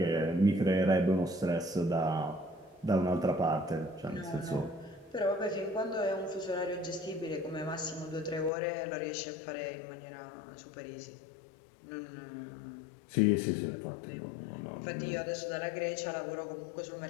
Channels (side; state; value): right; drops out; at 8.5 s